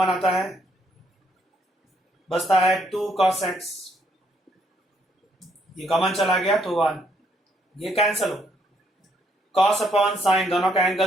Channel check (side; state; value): both; normal; correlation 0.71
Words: आता है, बचता है 2 cos x, ये कॉमन चला गया तो 1, ये कैंसल हो। cos अपॉन sin दोनों का